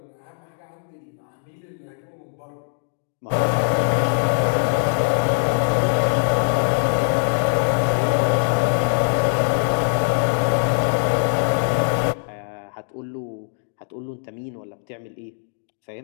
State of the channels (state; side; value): silent; right; digital silence